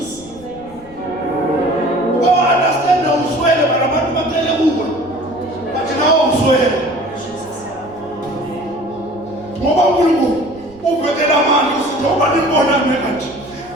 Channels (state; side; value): noise; right; rumble, 24 dB below the sound